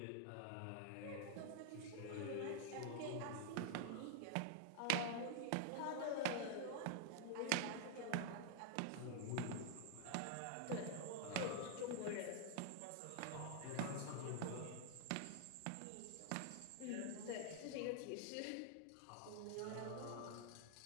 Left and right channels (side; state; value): both; different; correlation -0.01